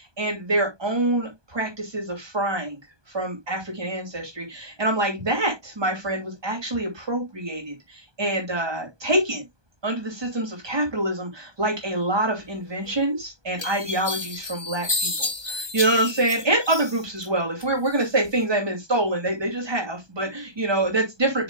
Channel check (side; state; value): left; late; 1.2 ms